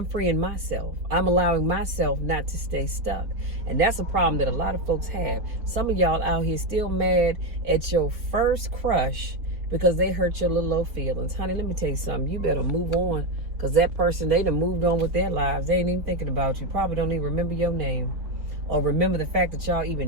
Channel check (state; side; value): late; left; 4.1 ms